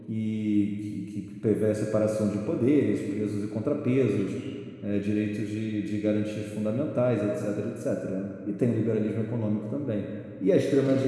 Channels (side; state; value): both; identical; correlation 1.00